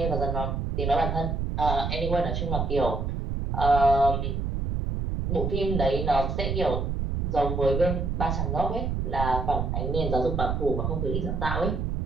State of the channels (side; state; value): right; noise; rumble, 1 dB below the sound